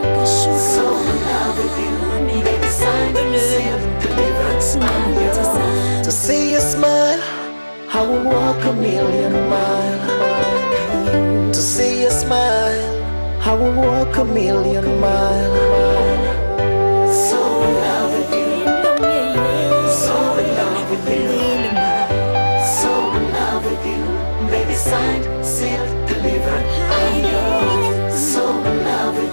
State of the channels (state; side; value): inverted; both; correlation -1.00